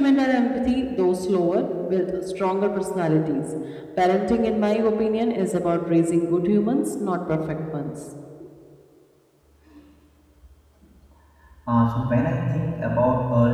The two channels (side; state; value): both; identical; correlation 1.00